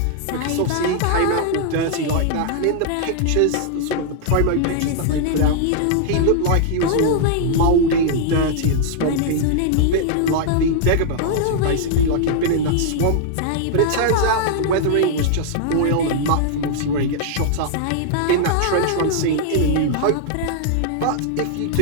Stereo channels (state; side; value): different; both; correlation -0.01